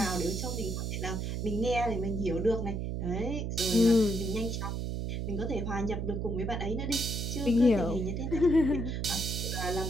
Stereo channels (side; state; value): right; noise; hum, 2 dB below the sound